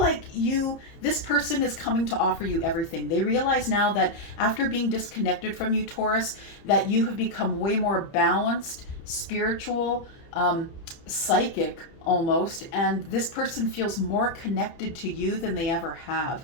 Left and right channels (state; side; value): late; right; 30 ms